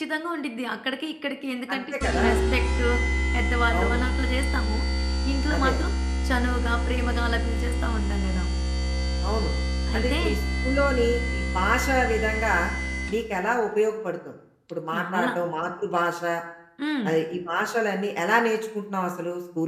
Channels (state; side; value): identical; both; correlation 1.00